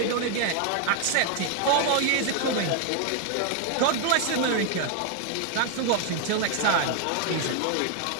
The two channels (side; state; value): both; different; correlation 0.00